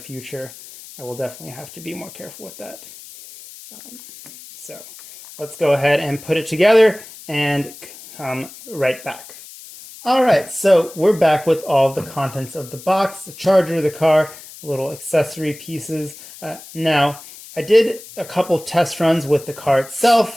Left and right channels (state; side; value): noise; left; hiss, 17 dB below the sound